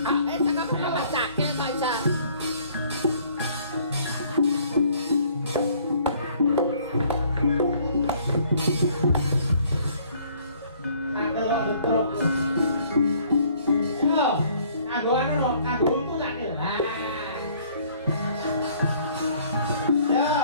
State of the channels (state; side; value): inverted; both; correlation -0.59